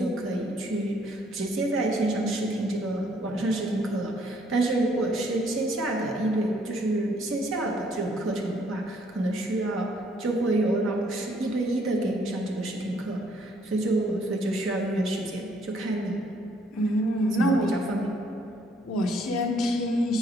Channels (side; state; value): both; normal; correlation 0.66